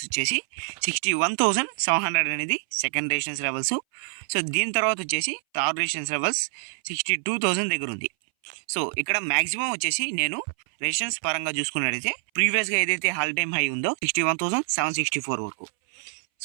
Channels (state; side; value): silent; left; 60 dB below the other